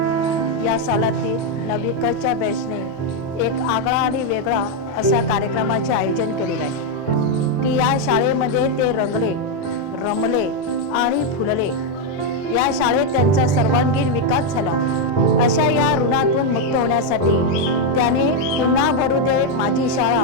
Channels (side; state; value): both; normal; correlation 0.02